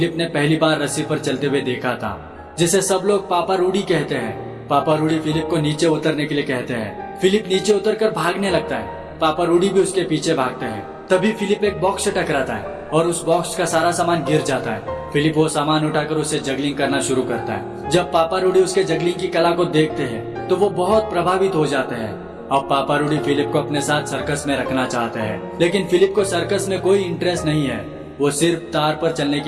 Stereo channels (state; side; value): identical; both; correlation 1.00